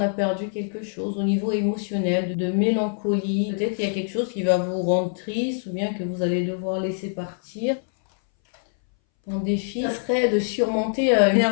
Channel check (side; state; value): right; silent; 61 dB below the other